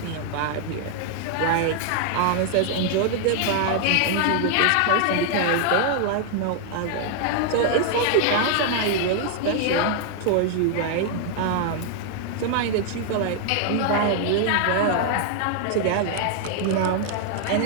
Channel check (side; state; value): both; different; correlation 0.00